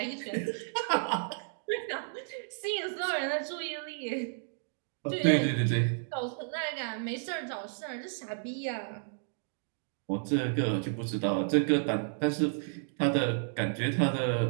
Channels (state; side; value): silent; left; digital silence